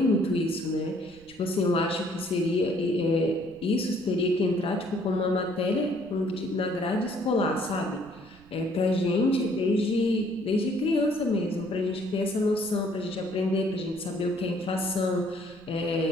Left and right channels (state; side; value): noise; right; rumble, 26 dB below the sound